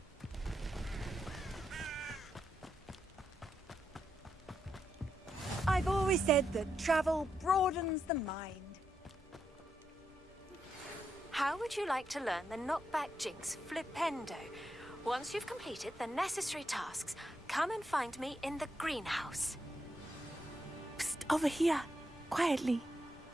I've always said that travel broadens the mind. How would you like to learn the knockback jinx flipendo? Once you've completed the necessary tasks, come and find me in the greenhouse. Psst, over here, quietly.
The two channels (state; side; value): normal; both; correlation 0.82